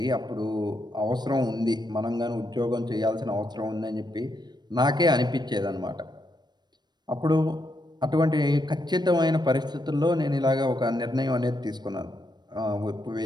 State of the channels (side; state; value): left; late; 0.21 ms